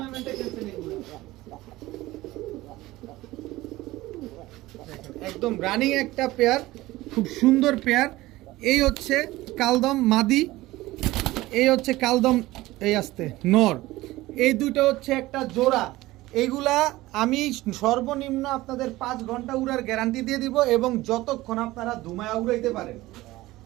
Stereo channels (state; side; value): quieter; left; 18.1 dB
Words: খেলছেন। একদম রানিং একটা পেয়ার, খুব সুন্দর পেয়ার। এই হচ্ছে কালদম মাদি, এই হচ্ছে কালদম এই আসতে নর। এই দুটো হচ্ছে একটা জোড়া। এইগুলা আমি সর্বনিম্ন আপনাদের 5 ঘন্টা উড়ার গ্যারান্টি দিয়ে দিব, এবং যতক্ষণ আপনারা ধুমায়া উড়াইতে পারেন।